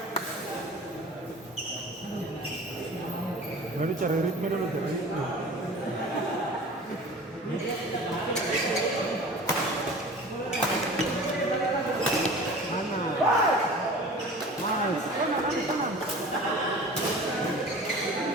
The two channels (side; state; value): both; normal; correlation 0.40